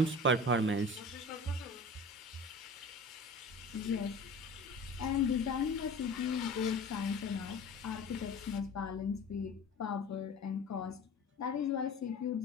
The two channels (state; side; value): normal; both; correlation 0.39